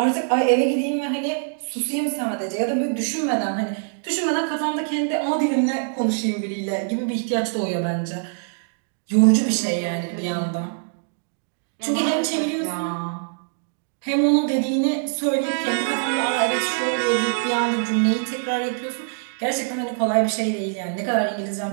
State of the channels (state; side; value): silent; left; digital silence